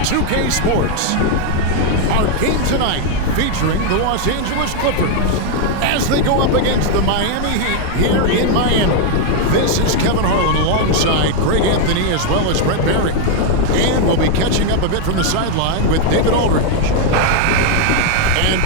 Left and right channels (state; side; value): different; both; correlation 0.01